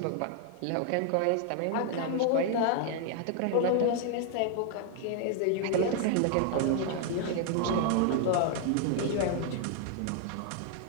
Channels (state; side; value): different; both; correlation 0.00